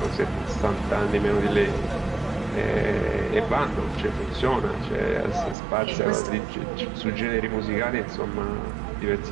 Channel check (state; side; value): drops out; left; at 5.6 s